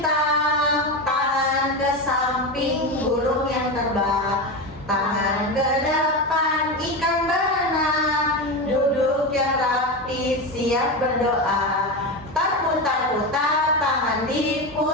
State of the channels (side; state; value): both; normal; correlation 0.18